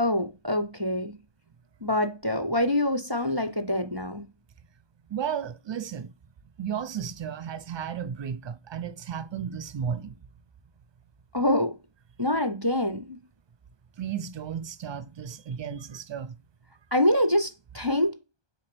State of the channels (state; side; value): late; left; 1.2 ms